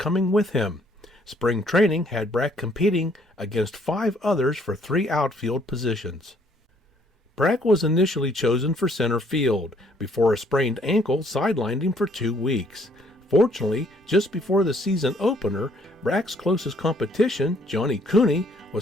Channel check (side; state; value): both; normal; correlation 0.64